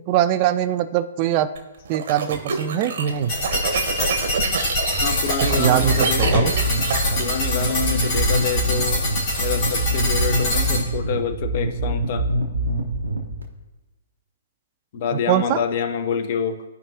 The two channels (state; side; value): inverted; both; correlation -0.40